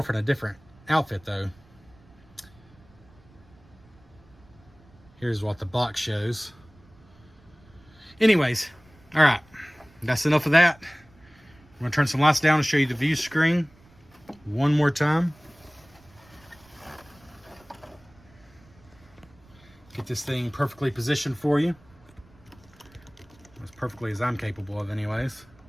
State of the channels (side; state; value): right; noise; rumble, 27 dB below the sound